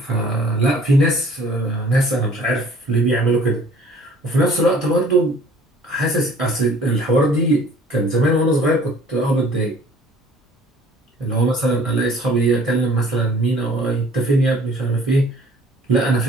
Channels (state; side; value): normal; both; correlation 0.53